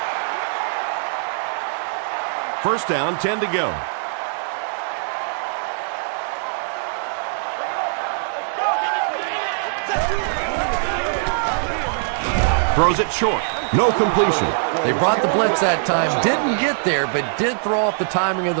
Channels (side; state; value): left; silent; 64 dB below the other